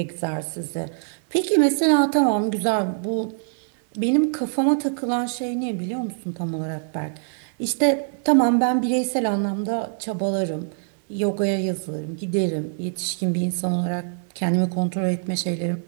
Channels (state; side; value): silent; left; 63 dB below the other